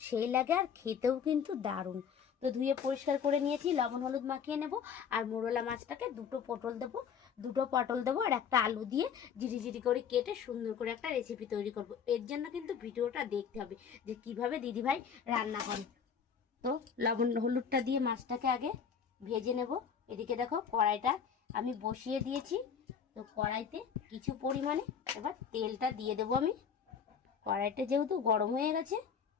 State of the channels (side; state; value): right; quieter; 7.2 dB